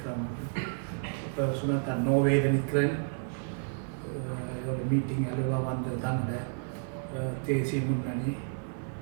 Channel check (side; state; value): left; silent; 57 dB below the other